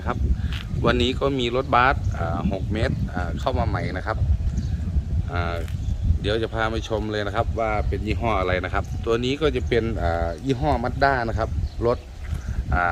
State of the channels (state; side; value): identical; both; correlation 1.00